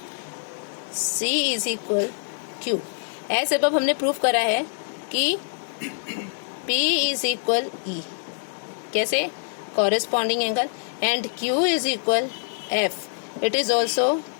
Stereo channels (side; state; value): right; silent; digital silence